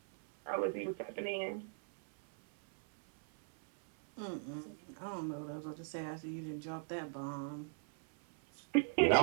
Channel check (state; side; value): silent; left; 52 dB below the other